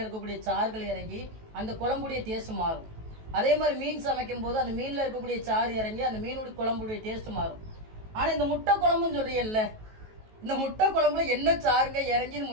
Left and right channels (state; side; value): late; left; 18 ms